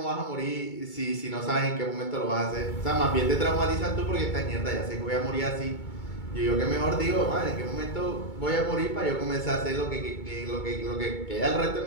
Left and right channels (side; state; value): right; late; 2.2 ms